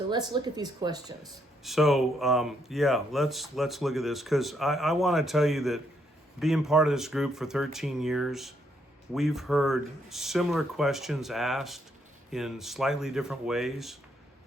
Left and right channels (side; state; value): both; normal; correlation 0.74